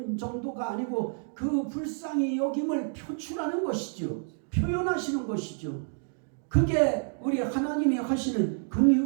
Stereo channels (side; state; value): left; silent; 59 dB below the other